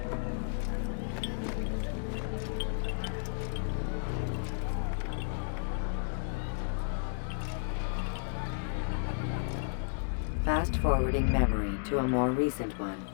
Fast-forwarding memory to a more recent one.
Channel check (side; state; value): right; silent; digital silence